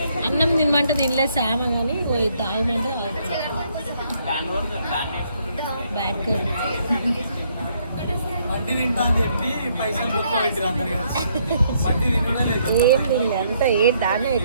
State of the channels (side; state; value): both; inverted; correlation -0.70